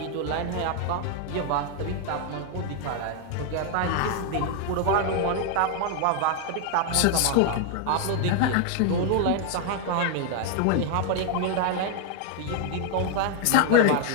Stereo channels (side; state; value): both; different; correlation 0.00